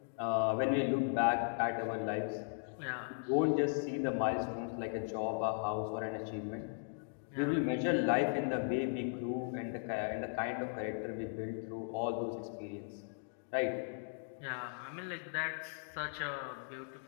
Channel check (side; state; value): right; silent; digital silence